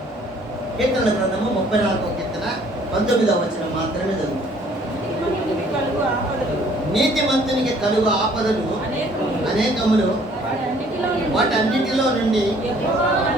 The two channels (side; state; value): both; normal; correlation 0.59